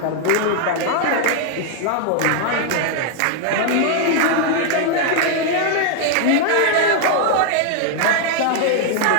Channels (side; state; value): both; different; correlation 0.00